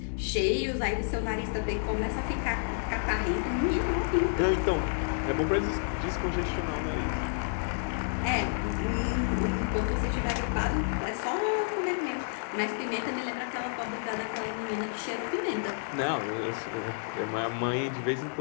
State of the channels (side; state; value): right; silent; digital silence